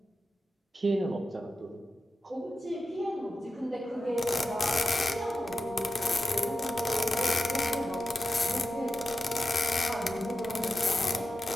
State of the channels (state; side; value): normal; both; correlation 0.92